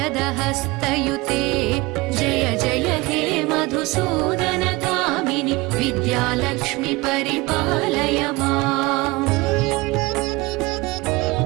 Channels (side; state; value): left; quieter; 22.7 dB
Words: जय जय हे मधुसूदन कामिनि विद्यालक्ष्मि परिपालय माम्।